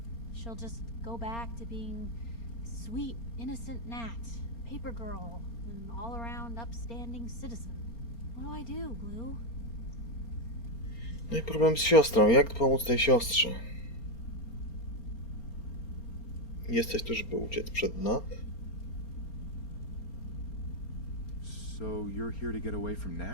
She'll just go back to being sweet, innocent Nat, paper girl, an all-around upstanding citizen. What do I do, Blue? No i problem z siostrą. Jak pomóc tej siostrze? Jesteś tu, żeby uciec przed Nat? So you're here to get away from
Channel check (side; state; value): right; late; 4.3 ms